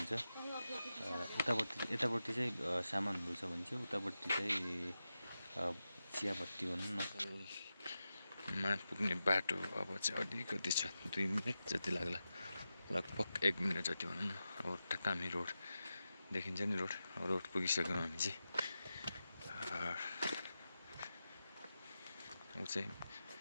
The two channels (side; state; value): both; inverted; correlation -0.91